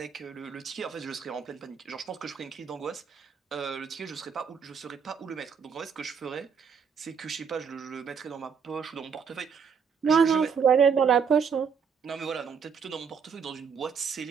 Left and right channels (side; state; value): left; quieter; 6.5 dB